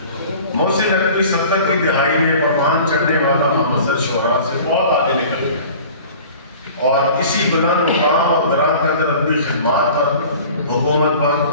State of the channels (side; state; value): both; inverted; correlation -0.44